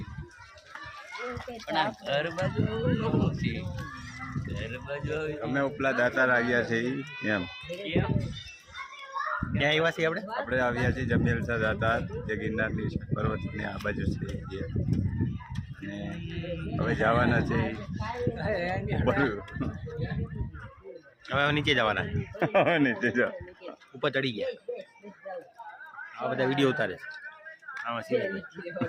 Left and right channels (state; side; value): identical; both; correlation 1.00